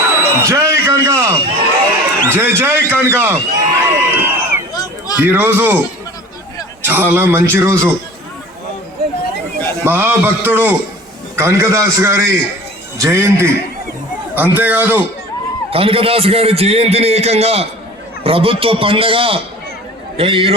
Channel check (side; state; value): both; normal; correlation 0.42